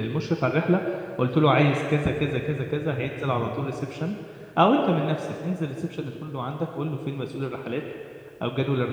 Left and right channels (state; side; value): identical; both; correlation 1.00